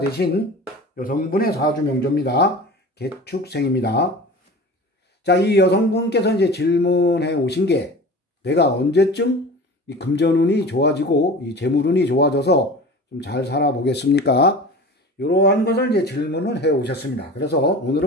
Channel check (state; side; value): normal; both; correlation 0.36